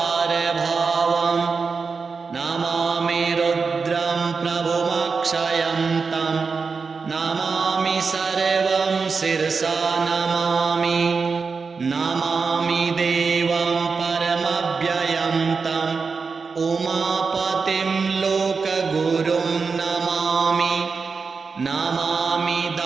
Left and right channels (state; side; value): quieter; left; 4.9 dB